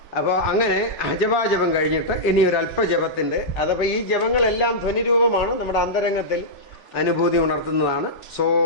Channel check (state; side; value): late; right; 3.4 ms